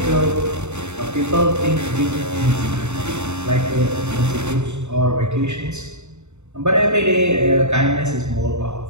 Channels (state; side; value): late; left; 0.82 ms